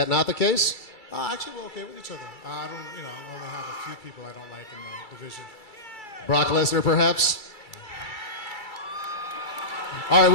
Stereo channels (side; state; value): right; late; 2.3 ms